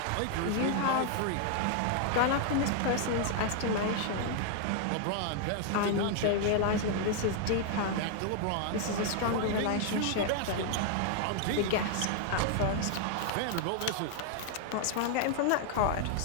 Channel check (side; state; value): both; different; correlation 0.00